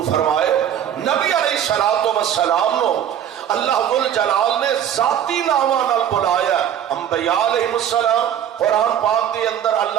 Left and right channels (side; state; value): left; quieter; 9.8 dB